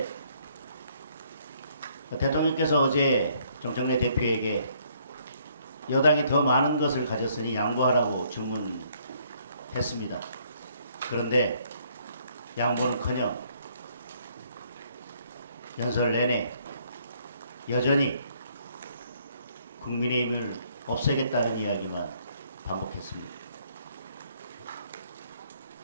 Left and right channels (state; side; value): inverted; both; correlation -0.66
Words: 대통령께서 어제 정청래 대표에게 여당이 더 많은 것을 가졌으니 양보하라고 주문했습니다. 그런데 양보는커녕 연설 내내 여전히 국민의힘을 없애겠다는 이야기만 반복했습니다.